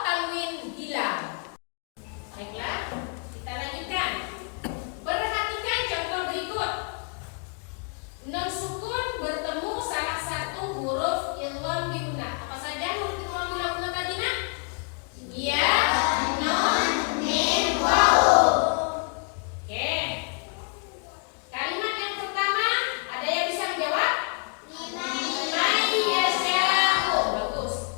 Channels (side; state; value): right; quieter; 39.9 dB